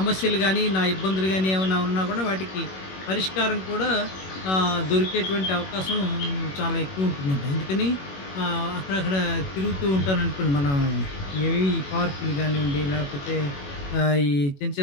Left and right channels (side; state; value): right; late; 21 ms